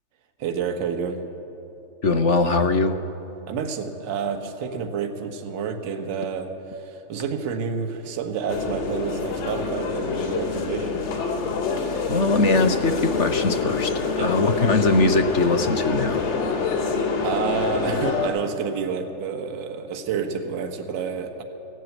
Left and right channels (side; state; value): right; late; 3.4 ms